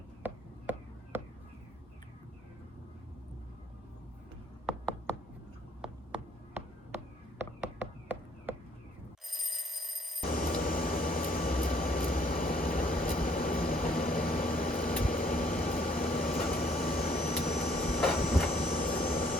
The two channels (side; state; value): both; normal; correlation 0.63